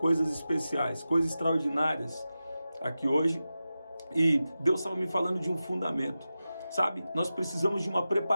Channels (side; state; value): both; inverted; correlation -0.93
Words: especiais, coisas extraordinárias aqui hoje. E Deus estava me falando de um fundamento. Sabe, nós precisamos de uma